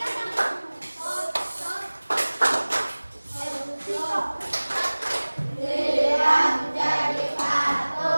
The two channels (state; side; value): inverted; both; correlation -1.00